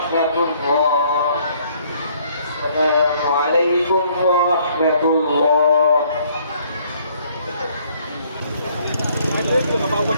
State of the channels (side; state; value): both; inverted; correlation -0.63